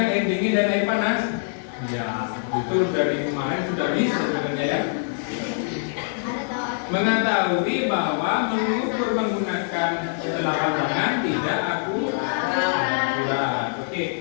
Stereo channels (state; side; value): silent; right; digital silence